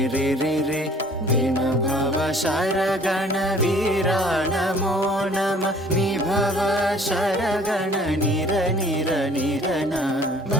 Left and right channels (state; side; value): normal; both; correlation 0.54